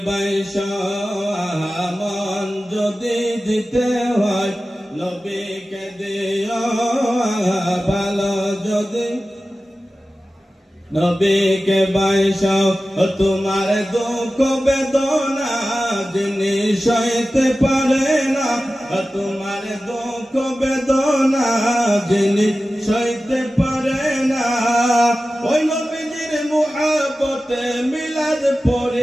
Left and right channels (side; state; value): both; normal; correlation 0.95